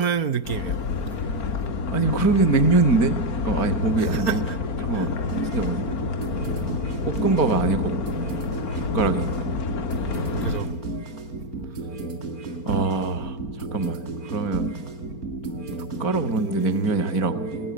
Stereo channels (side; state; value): right; late; 4.4 ms